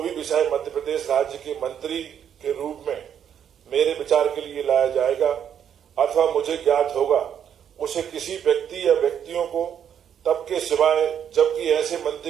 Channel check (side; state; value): left; quieter; 8.8 dB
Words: विषय मध्य प्रदेश राज्य के मंत्री के रूप में मेरे विचार के लिए लाया जाएगा अथवा मुझे ज्ञात होगा उसे किसी व्यक्ति या व्यक्तियों को तब के सिवाय जबकि ऐसे